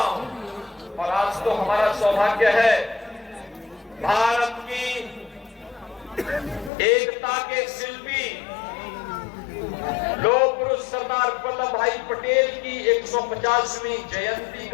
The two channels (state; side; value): drops out; right; at 6.7 s